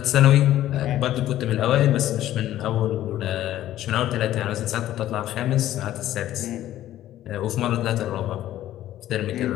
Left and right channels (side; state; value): right; quieter; 13.3 dB